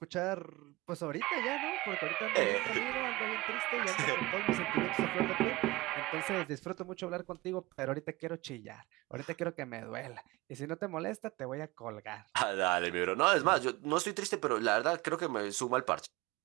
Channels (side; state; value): left; quieter; 20.8 dB